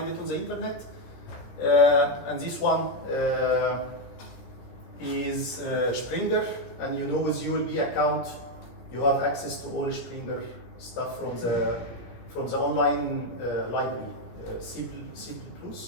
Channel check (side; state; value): right; late; 17 ms